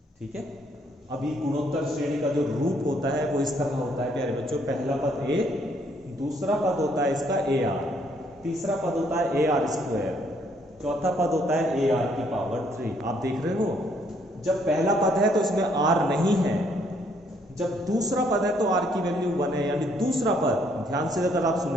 ठीक है। अभी गुणोत्तर श्रेणी का जो रूप होता है वो इस तरह होता है प्यारे बच्चों। पहला पद ए, दूसरा पद होता है इसका ए आर, तीसरा पद होता है ए आर स्क्वायर, चौथा पद होता है ए आर की पावर 3। आप देख रहे हो, जब पहला पद है तो इसमें आर नहीं है, जब दूसरा पद है तो आर की वैल्यू 1 है। यानी दूसरा पद, ध्यान से अगर आप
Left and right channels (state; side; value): normal; both; correlation 0.68